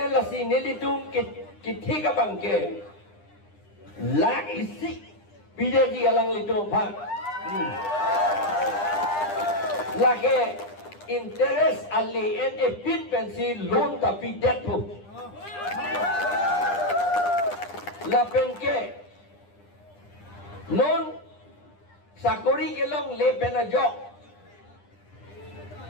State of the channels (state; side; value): late; right; 9.9 ms